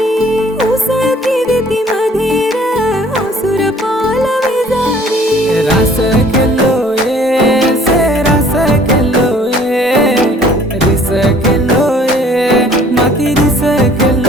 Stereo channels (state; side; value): normal; both; correlation 0.55